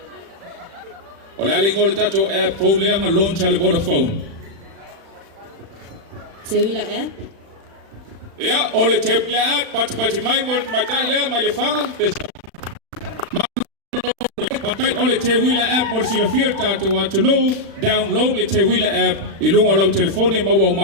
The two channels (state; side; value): late; left; 36 ms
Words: Ole alingol tato app phone le nga launch ale Vodafone. Teuila app? Ja, ole Teuila app pati mai mol matai le mai le fanga. Patai ole Teuila app mol sila fir tato wa to know download le Teuila app ilunga lau telefone mawa